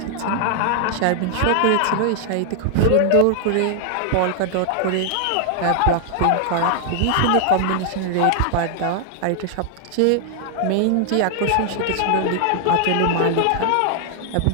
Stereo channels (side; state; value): both; different; correlation 0.00